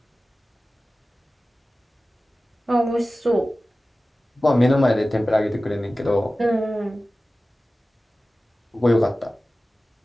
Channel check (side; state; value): both; normal; correlation 0.96